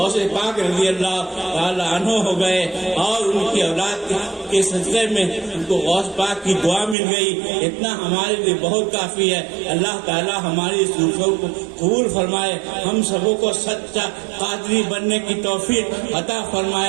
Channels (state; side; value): drops out; left; at 7.0 s